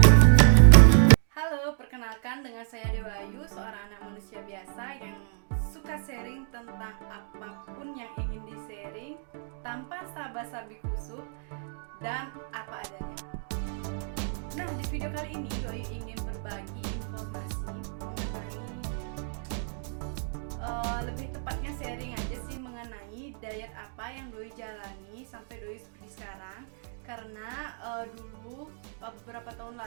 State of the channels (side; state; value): left; silent; 59 dB below the other